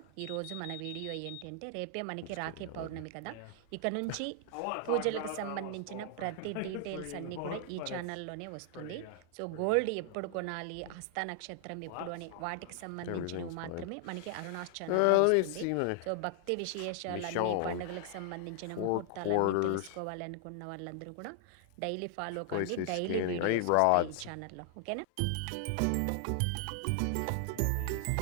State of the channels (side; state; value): both; different; correlation 0.00